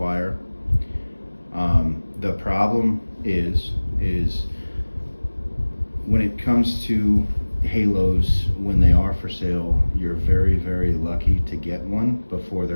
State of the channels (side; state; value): both; inverted; correlation -1.00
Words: The problem is when it comes to Halos, when they are for sale, you're very, very lucky to get one before